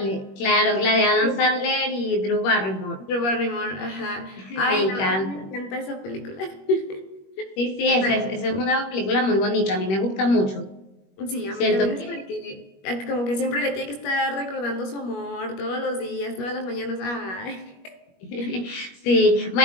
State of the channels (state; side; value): late; right; 21 ms